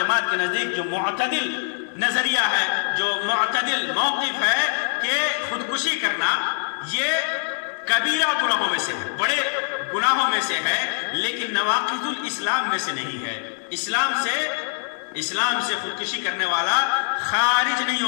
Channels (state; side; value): silent; right; digital silence